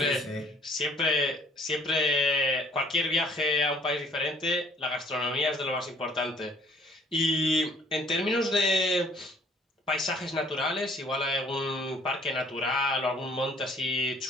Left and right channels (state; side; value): normal; both; correlation 0.59